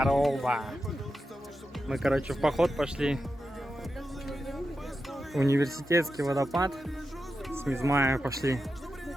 Мы, короче, в поход пошли. Университетский водопад. С Мизмая пошли.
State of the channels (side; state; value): both; normal; correlation 0.90